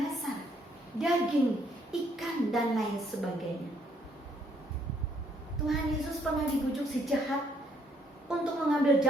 daging, ikan, dan lain sebagainya. Tuhan Yesus pernah dibujuk si jahat untuk mengambil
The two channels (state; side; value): normal; both; correlation 0.67